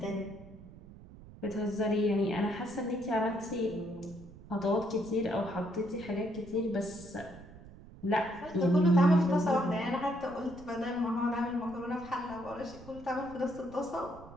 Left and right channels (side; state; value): right; noise; rumble, 18 dB below the sound